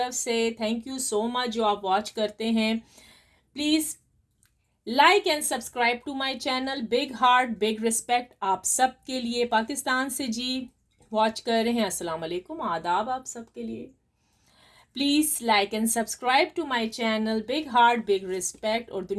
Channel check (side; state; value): both; identical; correlation 1.00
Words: से। थैंक यू सो मच जो आप वॉच करते हैं। Please like and subscribe to my channel. Big heart big respect आप सब के लिए। पाकिस्तान से जी वॉच कर रहे हैं, अस्सलाम वालेकुम, आदाब आप सब के लिए। Please like and subscribe to my channel. Big heart big respect. और